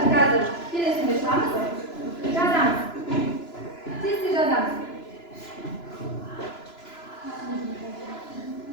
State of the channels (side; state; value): right; late; 2.9 ms